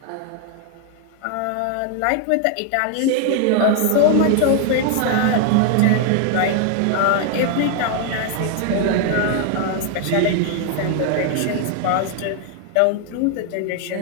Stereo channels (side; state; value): both; different; correlation 0.00